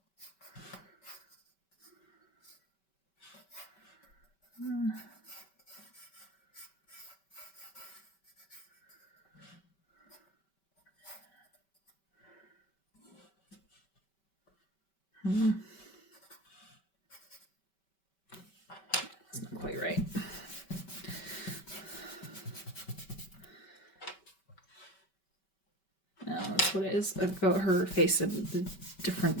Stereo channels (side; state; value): right; late; 5.2 ms